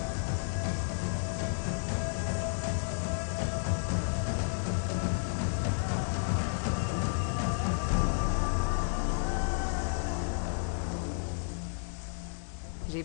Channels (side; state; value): right; silent; digital silence